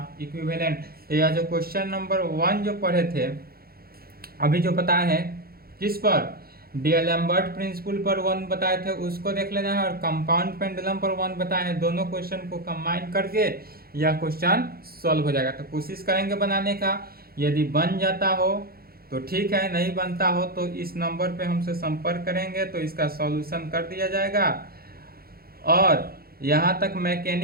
इक्विवेलेंट। तो यह जो क्वेश्चन नंबर 1 जो पढ़े थे अभी जो बताए हैं किस पर, डीएलएम्बर्ट प्रिंसिपल पर 1 बताए थे उसको देख लेना है, और कंपाउंड पेंडुलम पर 1 बताए हैं। दोनों क्वेश्चन को कंबाइन करके यह क्वेश्चन सॉल्व हो जाएगा। तो कोशिश करेंगे बनाने का, यदि बन जाता हो तो ठीक है, नहीं बनता हो तो इस नंबर पे हमसे संपर्क करेंगे तो इसका सॉल्यूशन कर दिया जाएगा। और यहाँ तक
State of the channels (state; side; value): late; left; 0.44 ms